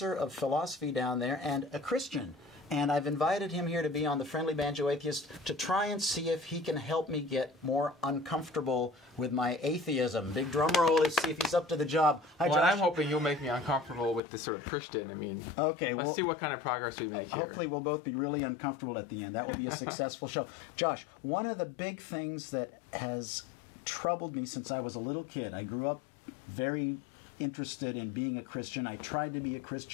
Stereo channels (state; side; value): drops out; right; at 14.2 s